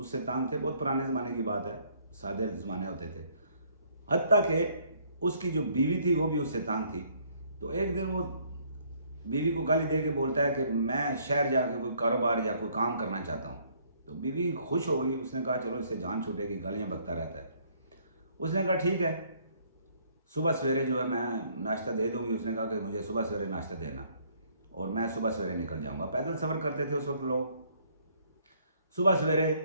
तंग थे। बहुत पुराने ज़माने की बात है, सादे ज़माने होते थे। हत्ता कि उसकी जो बीवी थी वो भी उससे तंग थी। तो एक दिन वो बीवी को गाली दे के बोलता है कि मैं शहर जाकर कोई कारोबार या कोई काम करना चाहता हूँ। तो बीवी खुश हो गई, उसने कहा चलो इससे जान छूटेगी, गालियाँ बकता रहता है। उसने कहा ठीक है, सुबह सवेरे जो है मैं नाश्ता दे दूंगी। उसने कहा कि मुझे सुबह सवेरे नाश्ता देना और मैं सुबह सवेरे निकल जाऊंगा। पैदल सफ़र करते थे उस वक्त लोग। सुबह सवेरे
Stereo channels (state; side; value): inverted; both; correlation -0.64